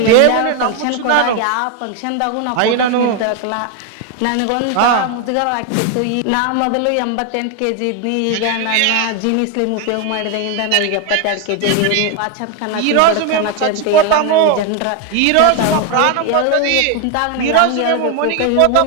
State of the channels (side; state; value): both; different; correlation 0.01